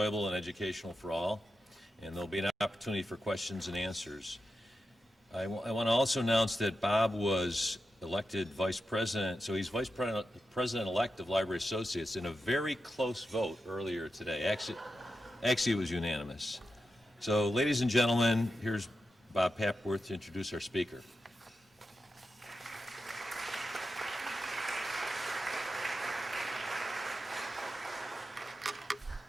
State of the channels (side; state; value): both; normal; correlation 0.89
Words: and educational for all, and there'll be an opportunity for questions and answers. I want to also announce that Bob was elected vice president, so he's vice president-elect of Library Associates in a very close vote earlier today. Actually, it was unanimous. So, ladies and gentlemen, here's Bob Papworth to introduce our speaker.